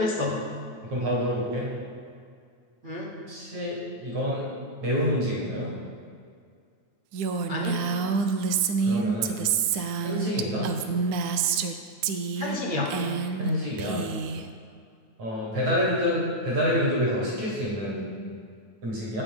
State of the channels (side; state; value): left; late; 9.7 ms